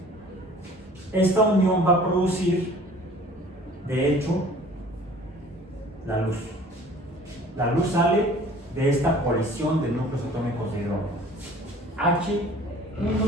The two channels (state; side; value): normal; both; correlation 0.49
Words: esta unión va a producir, de hecho, la luz. La luz sale de esta colisión de núcleos atómicos de hidrógeno.